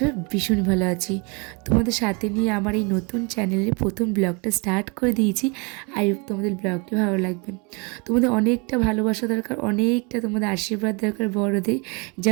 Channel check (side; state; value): left; quieter; 31.0 dB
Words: ভীষণ ভালো আছি। তোমাদের সাথে নিয়ে আমার এই নতুন চ্যানেলের প্রথম ব্লগটা স্টার্ট করে দিয়েছি। আই হোপ তোমাদের ব্লগটি ভালো লাগবে। তোমাদের অনেকটা ভালোবাসা দরকার, অনেকটা তোমাদের আশীর্বাদ দরকার বড়দের,